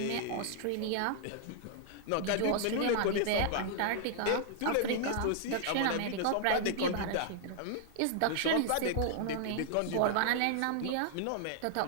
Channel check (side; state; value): both; different; correlation -0.01